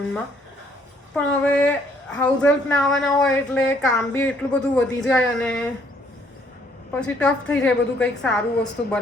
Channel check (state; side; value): normal; both; correlation 0.65